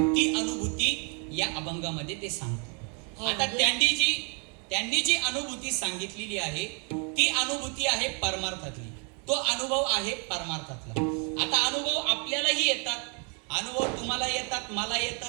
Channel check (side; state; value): left; quieter; 36.8 dB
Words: अनुभूती या अभंगामध्ये ते सांगतात. आता त्यांनी जी अनुभूती सांगितलेली आहे ती अनुभूती आहे परमार्थातली, तो अनुभव आहे परमार्थातला. आता अनुभव आपल्यालाही येतात, अनुभव तुम्हाला येतात, मला